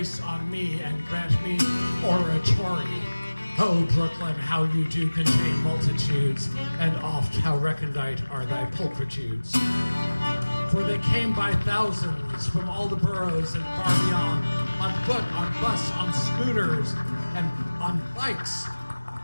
on me and grant me oratory. Oh, Brooklyn, how you do contain multitudes, and oft how recondite are thy pulchritudes. For they came by thousands from all the boroughs and far beyond, on foot, on bus, on scooters, and on bikes,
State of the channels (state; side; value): inverted; both; correlation -1.00